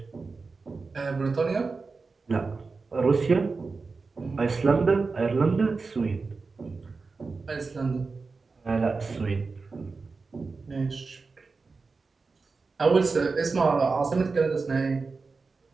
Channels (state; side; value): quieter; left; 4.3 dB